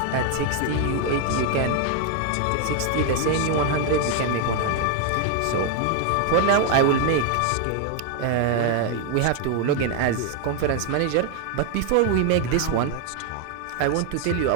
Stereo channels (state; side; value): different; both; correlation 0.01